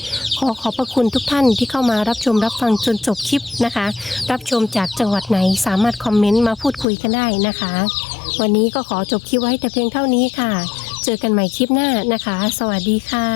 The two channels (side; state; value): right; drops out; at 6.9 s